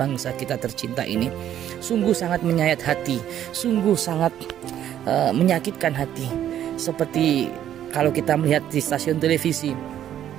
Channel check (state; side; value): quieter; left; 10.9 dB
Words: kita tercinta ini. Sungguh sangat menyayat hati, sungguh sangat menyakitkan hati. Seperti kalau kita melihat di stasiun televisi,